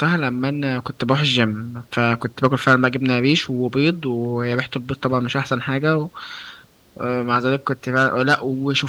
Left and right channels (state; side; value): identical; both; correlation 1.00